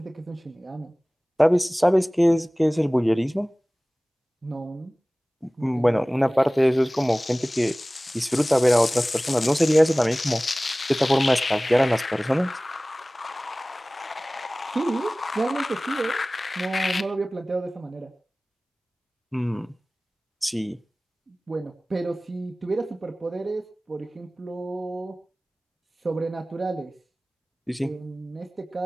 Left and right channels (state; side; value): normal; both; correlation 0.98